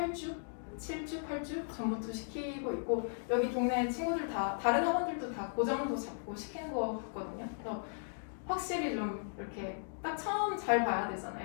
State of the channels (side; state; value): right; silent; digital silence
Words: 7주, 8주 전부터 시키고 있고 여기 동네 친구들 다 다른 학원들도 다 고정도 잡고 시키는 거 같거든요. 그래서 확실히 좀 이렇게 딱 처음 잘 봐야